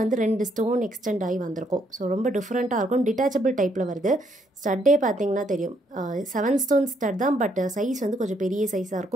வந்து 2 ஸ்டோன் எக்ஸ்டெண்ட் ஆகி வந்திருக்கும். ஸோ ரொம்ப டிஃப்ரெண்ட்டாக இருக்கும். டிட்டாச்சபிள் டைப்பில் வருது. ஸ்டட்டே பார்த்திங்கன்னா தெரியும் 7 ஸ்டோன் ஸ்டட் தான். பட் சைஸ் வந்து கொஞ்சம் பெரிய சைஸாக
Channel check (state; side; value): normal; both; correlation 0.71